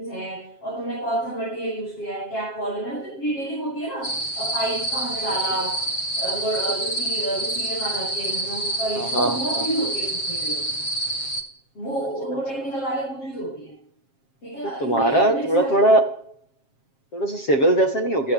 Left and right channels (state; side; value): late; right; 7.4 ms